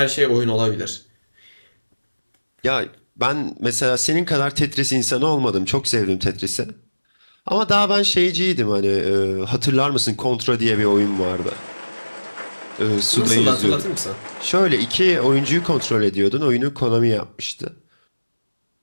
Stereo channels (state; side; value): inverted; both; correlation -1.00